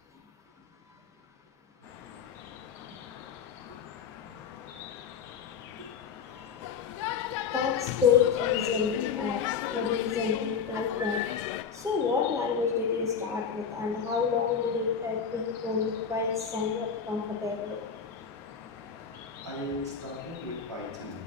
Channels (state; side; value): quieter; right; 6.6 dB